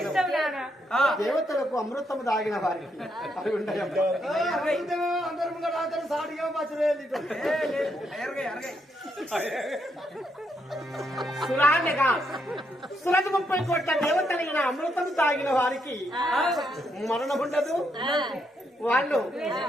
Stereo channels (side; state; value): both; normal; correlation 0.78